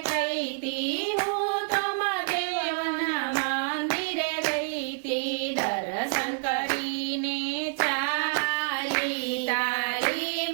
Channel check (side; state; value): left; silent; digital silence